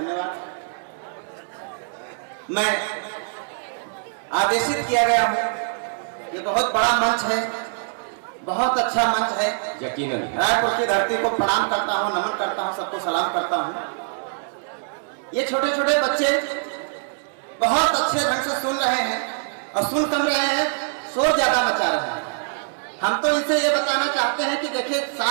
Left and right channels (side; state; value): left; silent; 63 dB below the other